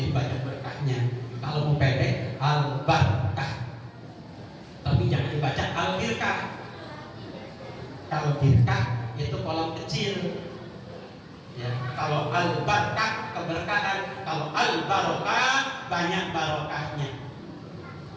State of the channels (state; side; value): identical; both; correlation 1.00